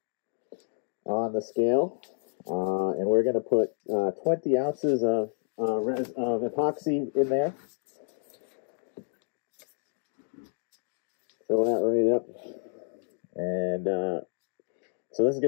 on the scale, and we're going to put 20 ounces of epoxy in there. Fill that right up. And so this is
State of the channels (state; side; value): silent; right; digital silence